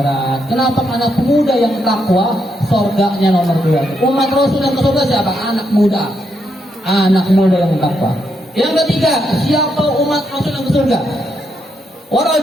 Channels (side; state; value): both; normal; correlation 0.79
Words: Kenapa? Anak muda yang takwa, surganya nomor 2. Umat Rasul yang ke surga siapa? Anak muda. Anak muda yang takwa. Yang ketiga, siapa umat Rasul yang ke surga? Wa